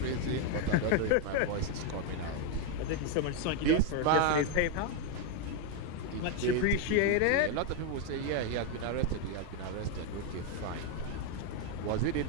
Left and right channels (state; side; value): different; both; correlation 0.01